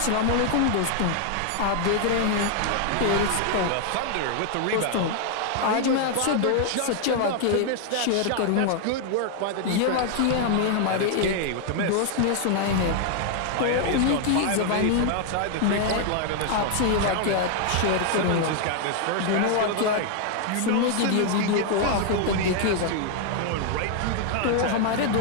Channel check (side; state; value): both; different; correlation 0.00